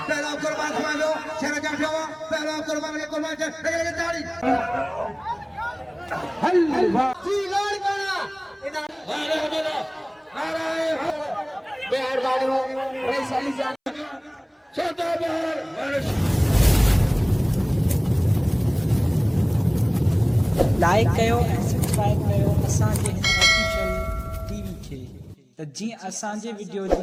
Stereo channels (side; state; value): both; identical; correlation 1.00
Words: कुर्बान खमालो शेरा जाफवा पहला कुर्बान के कुर्बान से लगे ताली हल्वा सीलोड़ करा अरे मेरा नाराय बिहार वालों रईस अली जान छोटा बिहार लाइक कयो सब्सक्राइब कयो असांजे ऑफिशियल टीवी खे त जीअं असांजे वीडियो